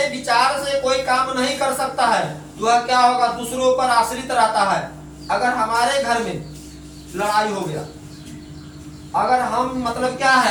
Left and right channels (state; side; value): identical; both; correlation 1.00